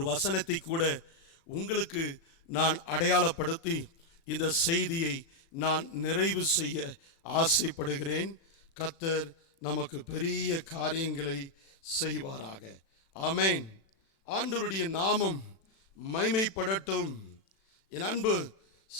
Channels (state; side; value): late; right; 36 ms